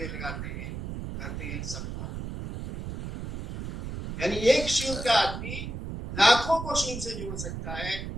लगाते हैं, कहते हैं सबको। यानी एक शिव का आदमी लाखों को शिव से जोड़ सकता है।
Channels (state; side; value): noise; right; rumble, 7 dB below the sound